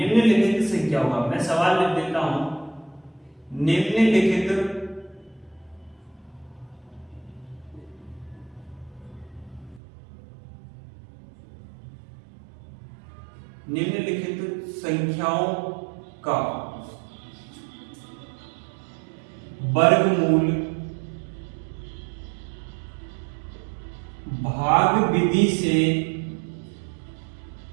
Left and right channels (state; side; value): drops out; left; at 9.8 s